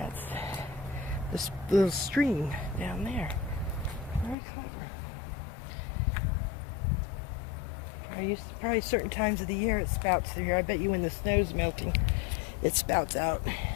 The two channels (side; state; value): right; drops out; at 4.4 s